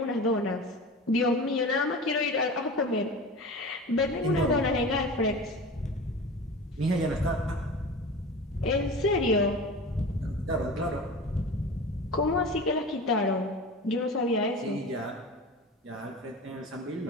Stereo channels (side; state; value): both; normal; correlation 0.34